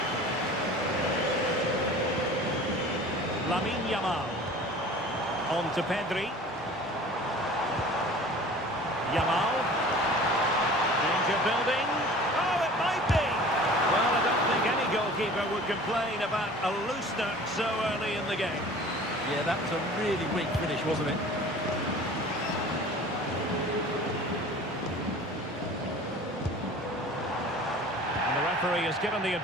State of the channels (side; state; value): both; normal; correlation 0.43